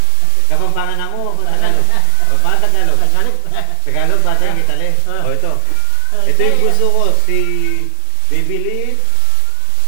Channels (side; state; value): both; different; correlation 0.00